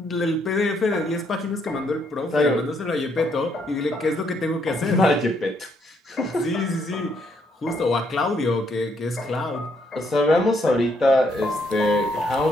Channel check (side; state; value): both; normal; correlation 0.72